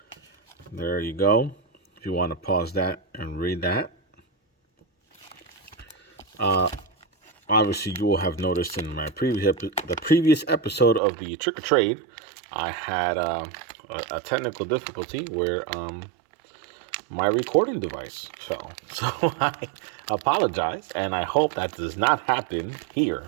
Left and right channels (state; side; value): drops out; left; at 11.0 s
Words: There you go. If you want to pause that and read that. Obviously, you will have noticed in my previous episode of the Trick or Trade, I had a technical difficulty where my recording device fell. So I apologize, and I hope that does not happen